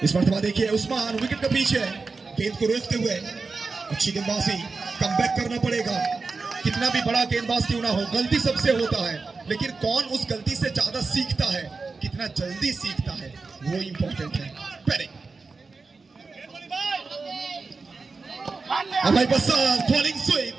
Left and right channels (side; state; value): left; quieter; 4.2 dB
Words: इस मरतबा देखिए उस्मान विकेट के पीछे, गेंद को रोकते हुए अच्छी गेंदबाजी, कमबैक करना पड़ेगा। कितना भी बड़ा गेंदबाज क्यों ना हो, गलती सबसे होता है, लेकिन कौन उस गलती से ज्यादा सीखता है, कितना जल्दी सीखता है, वो इंपॉर्टेंट है। पहले Abhay Prasad falling sweep,